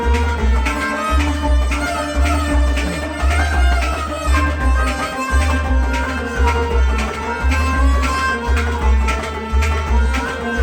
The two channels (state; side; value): identical; both; correlation 1.00